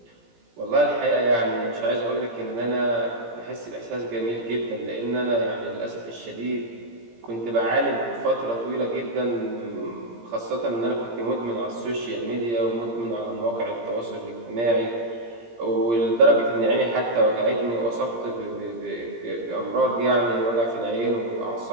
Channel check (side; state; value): left; late; 17 ms